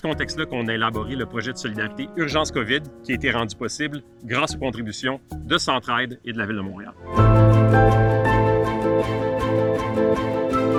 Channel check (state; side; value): identical; both; correlation 1.00